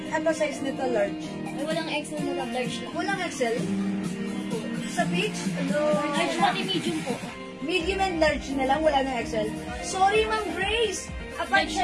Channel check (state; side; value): identical; both; correlation 1.00